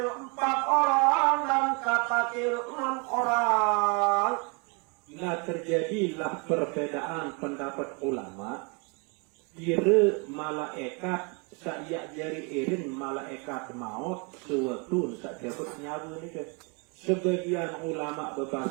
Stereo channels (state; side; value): quieter; left; 33.1 dB